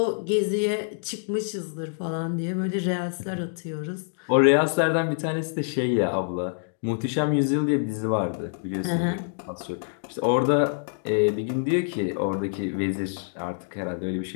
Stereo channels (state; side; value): silent; right; digital silence